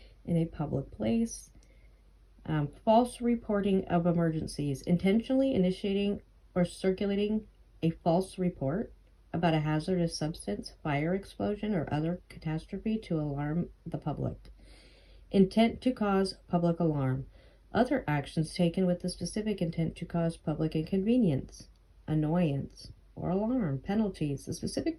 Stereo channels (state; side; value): identical; both; correlation 1.00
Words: in a public place. False reporting of emergencies, intentionally initiating or circulating a false report about a hazardous substance, fire, explosion, or other catastrophe to alarm the public. Intent to cause public alarm. Other actions taken with the specific intent to cause public inconvenience, annoyance, or alarm. Penalties. The specific